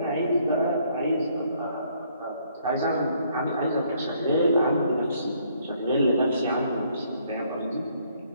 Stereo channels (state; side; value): inverted; both; correlation -0.66